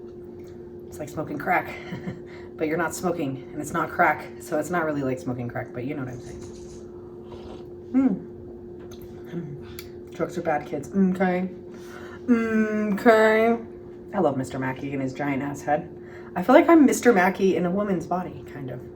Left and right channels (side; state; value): both; identical; correlation 1.00